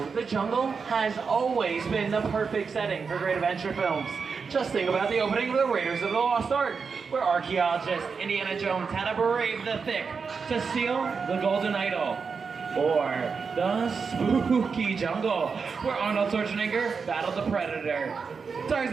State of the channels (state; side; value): quieter; left; 5.4 dB